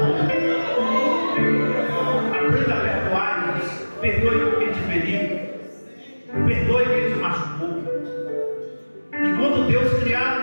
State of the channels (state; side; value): inverted; both; correlation -1.00